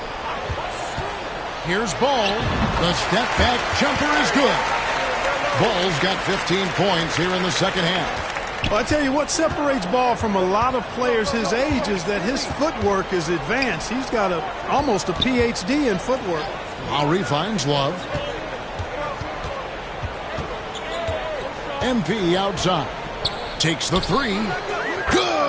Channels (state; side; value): identical; both; correlation 1.00